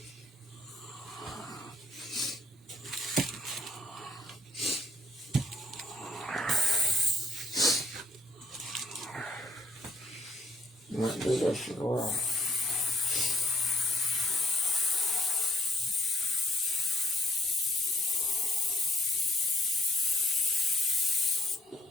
Might do this as well.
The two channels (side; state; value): both; normal; correlation 0.65